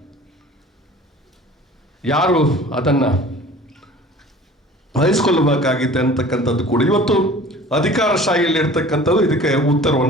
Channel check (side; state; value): both; normal; correlation 0.45